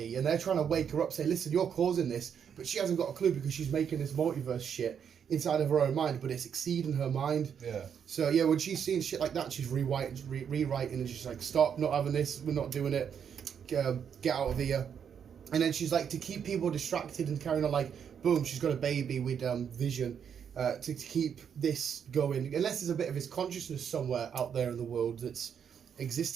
and they're trying to wake her up, say, "Listen, you're causing this," but she hasn't got a clue because she's making this multiverse shit inside of her own mind, but it's exceeding her mind. Yeah. So yeah, when she's seeing shit like that, she's rewriting, and she's like, "Stop! Not having this. We're not doing it. Get out of here." And then she's like, to keep people distracted and carrying on, like, boom, she's got a baby with Vision to keep this going. Unless there's a bit of his consciousness somewhere out there in the world that's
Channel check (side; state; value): left; quieter; 7.8 dB